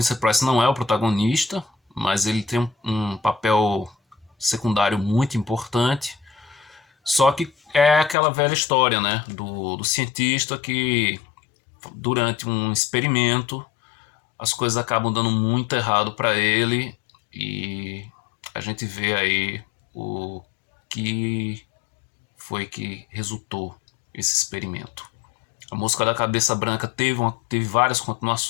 Price não é o protagonista, mas ele tem um papel secundário muito importante. Só que é aquela velha história, né, do cientista que durante um experimento as coisas acabam dando muito errado para ele e a gente vê aí o que foi que resultou esse experimento. A Mosca da Cabeça Branca teve várias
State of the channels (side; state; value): right; drops out; at 8.2 s